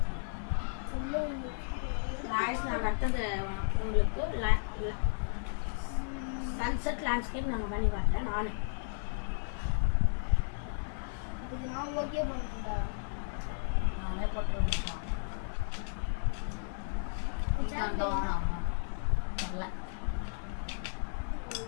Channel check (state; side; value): silent; right; 55 dB below the other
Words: गाइस நான் அடுத்தது உங்களுக்கு சன்செட் லேண்ட்ஸ்கேப் நாங்க பண்ணி பார்த்தேன் நான் இதுக்கு நான் ஓகே பண்ணுடா நானே போட்டுருக்கேன் இதான் தெரியல